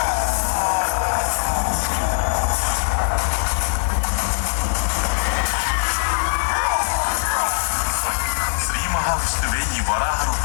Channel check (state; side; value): silent; right; digital silence